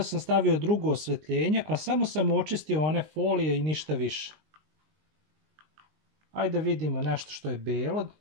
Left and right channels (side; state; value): left; late; 19 ms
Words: sam stavio drugo osvetljenje, a samo sam očistio one folije i ništa više. Ajde vidimo nešto što je belo.